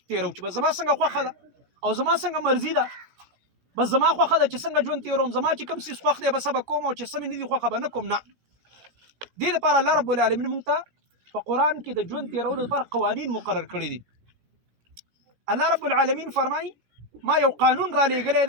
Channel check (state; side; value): late; left; 17 ms